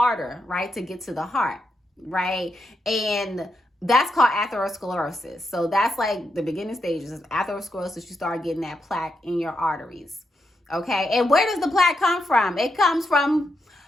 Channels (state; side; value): normal; both; correlation 0.83